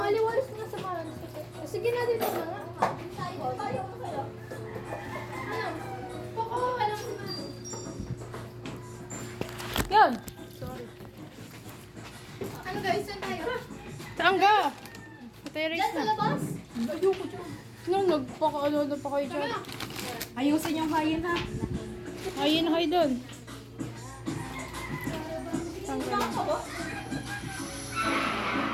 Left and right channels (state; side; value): identical; both; correlation 1.00